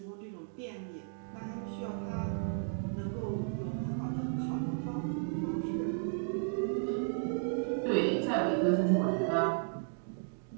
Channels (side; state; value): left; silent; digital silence